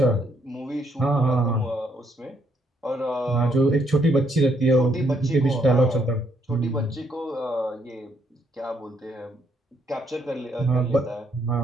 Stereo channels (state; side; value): normal; both; correlation 0.72